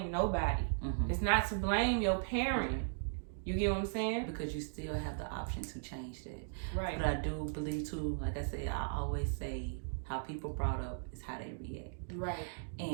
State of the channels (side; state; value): left; silent; digital silence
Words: nobody. It's not to blame your parent. You get what I'm saying? Because you still have the option to change that. Right. But I do believe too, like I said, I always say how people brought up is how they react. Right.